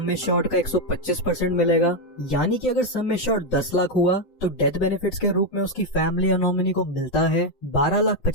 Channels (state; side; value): late; right; 7.9 ms